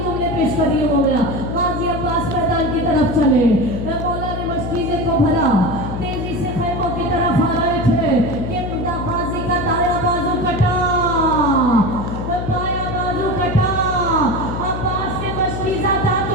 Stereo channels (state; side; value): noise; left; hum, 5 dB below the sound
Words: जुमले पेश करिए। हो गया गाजी अब्बास मैदान की तरफ चले, मौला ने मस्तीजे को भरा, तेजी से खैमों की तरफ आ रहे थे कि गाजी का दाया बाजू कटा, बाया बाजू कटा, अब्बास के मस्तीजा